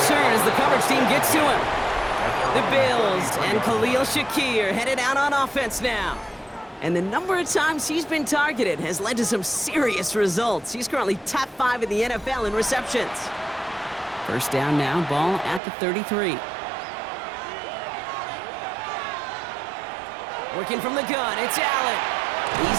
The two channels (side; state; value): left; drops out; at 15.6 s